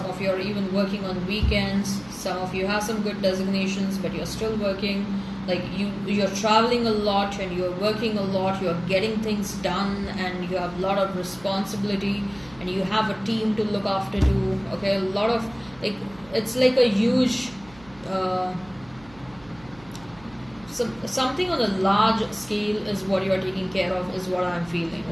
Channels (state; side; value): noise; right; hum, 23 dB below the sound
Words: of you are even working on weekends. Some of you have some good designations, but you're still working. Like you're traveling a lot and you're working a lot. You're getting things done and you have a lot of responsibility and you have a team to look after too. Okay, a lot of it's like a huge. Something on a large scale is what you are taking care of, is what I'm feeling,